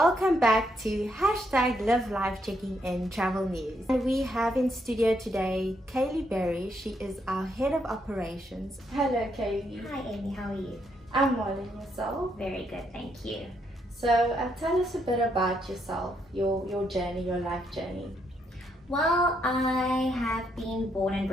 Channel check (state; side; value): normal; both; correlation 0.76